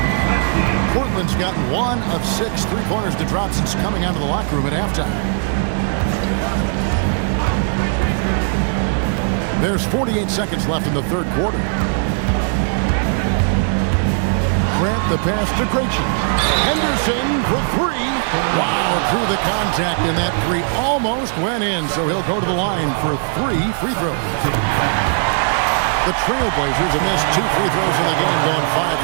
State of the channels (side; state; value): left; silent; 63 dB below the other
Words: Portland's gotten 1 of 6 3-pointers to drop since coming out of the locker room at halftime. There's 48 seconds left in the third quarter. Grant the pass to Krejci. Henderson for 3. Wow, through the contact, and that 3 almost went in, so he'll go to the line for 3 free throws. The Trailblazers have missed 2 free throws in the game, going 5